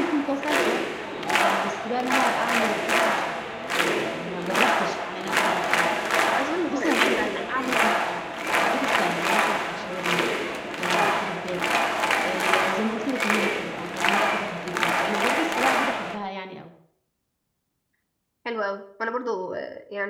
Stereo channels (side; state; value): both; identical; correlation 1.00